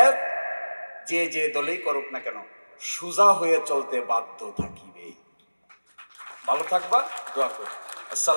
যে দলেই করুক না কেন সোজা হয়ে চলতে বাধ্য থাকিবে। ভালো থাকবা, দোয়া করি।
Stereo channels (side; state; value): both; inverted; correlation -1.00